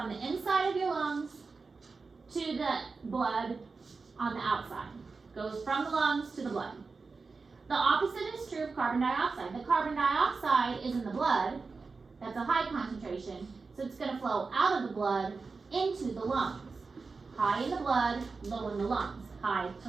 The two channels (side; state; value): left; quieter; 4.3 dB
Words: the inside of your lungs to the blood on the outside. Goes from the lungs to the blood. The opposite is true of carbon dioxide. The carbon dioxide is in the blood. That's a high concentration. So it's going to flow out of the blood into the lungs. High in the blood, low in the lungs. High